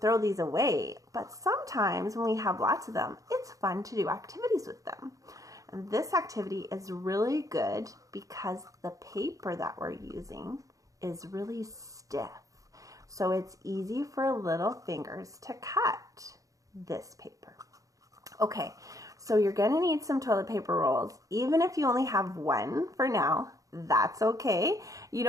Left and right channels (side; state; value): left; late; 0.16 ms